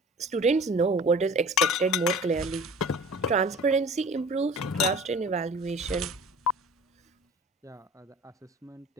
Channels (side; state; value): both; normal; correlation 0.44